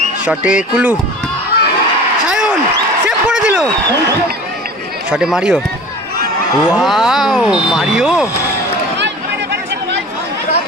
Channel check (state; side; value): normal; both; correlation 0.40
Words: শটে কুলু, সায়ন সেভ করে দিল। শটে মারিও, ওয়াও মারিও।